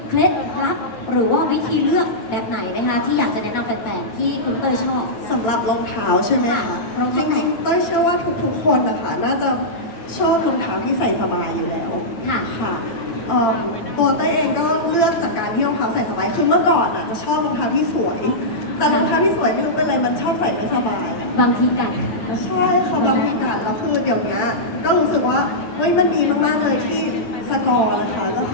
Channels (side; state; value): right; late; 8.8 ms